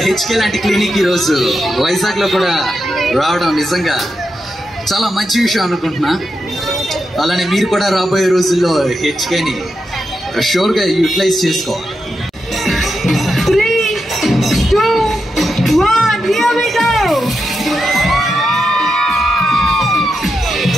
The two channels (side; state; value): both; normal; correlation 0.86